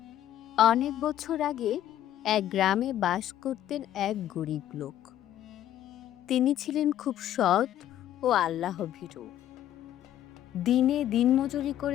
অনেক বছর আগে এক গ্রামে বাস করতেন এক গরিব লোক। তিনি ছিলেন খুব সৎ ও আল্লাহভীরু। দিনে দিনমজুরি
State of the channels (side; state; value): right; quieter; 12.0 dB